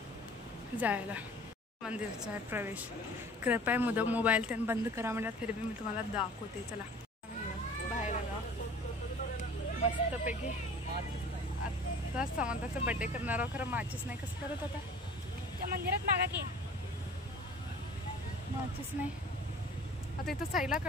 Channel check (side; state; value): both; normal; correlation 0.45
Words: जायला. मंदिरचा आहे प्रवेश. कृपया मोबाईल त्यांनी बंद करा म्हणतात फिर भी मी तुम्हाला दाखवते. चला बाहेर आलो मस्तपैकी. आता समंताचा बड्डे करणार आहोत. खरं माचीस नाही कसं करत आता त्या मंदिरात मागा की माचीस नाही. आता इथं साईला